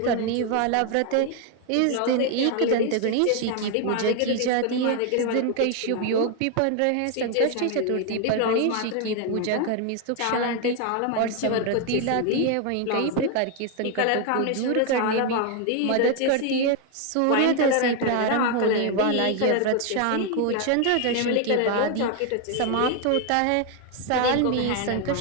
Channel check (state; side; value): different; both; correlation 0.01